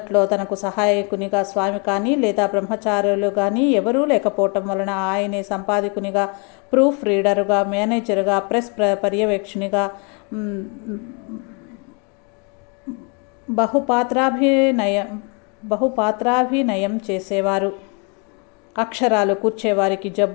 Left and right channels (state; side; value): quieter; right; 34.8 dB